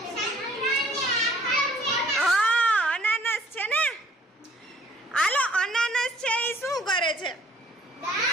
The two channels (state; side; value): normal; both; correlation 0.58